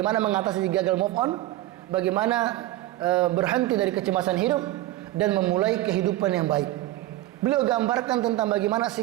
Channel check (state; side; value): quieter; left; 15.8 dB